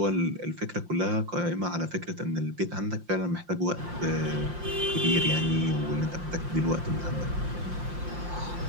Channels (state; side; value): late; left; 5.7 ms